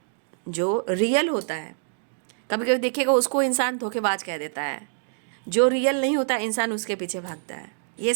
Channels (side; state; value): left; silent; digital silence